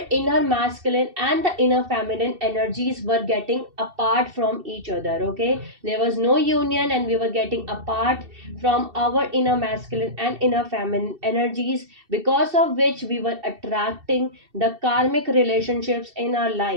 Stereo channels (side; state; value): left; late; 2.7 ms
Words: inner masculine and the inner feminine energies were getting apart from each other. Okay, there was no union and we were getting apart from our inner masculine and inner feminine energies, because of which we were attracting the karmic relationships in our